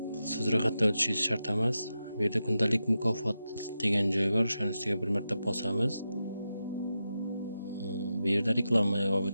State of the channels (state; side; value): inverted; both; correlation -0.89